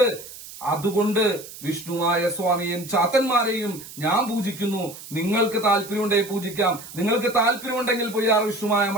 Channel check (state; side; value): noise; right; hiss, 15 dB below the sound